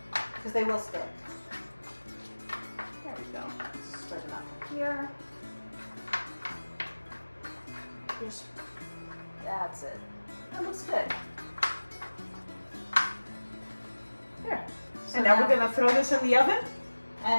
Because they will stick. There we go. Spread them out here. Here's, that's it. That looks good. There. So And now we're going to throw this in the oven.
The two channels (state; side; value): inverted; both; correlation -1.00